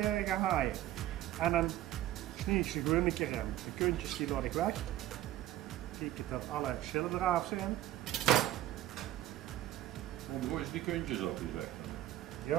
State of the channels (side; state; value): left; quieter; 13.9 dB